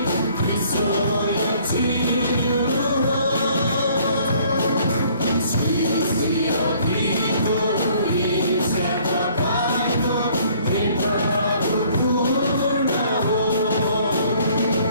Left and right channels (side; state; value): both; inverted; correlation -0.59